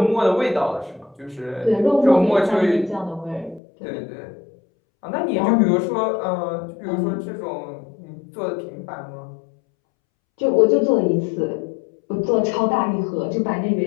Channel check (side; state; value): right; drops out; at 3.6 s